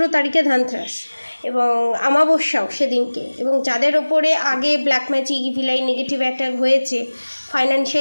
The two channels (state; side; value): inverted; both; correlation -1.00